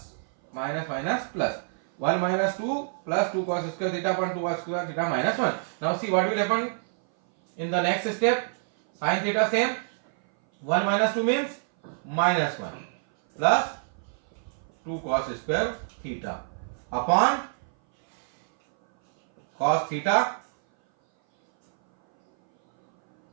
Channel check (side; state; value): left; silent; 58 dB below the other